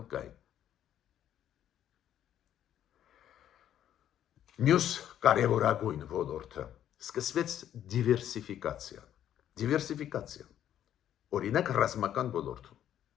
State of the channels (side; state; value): right; quieter; 10.8 dB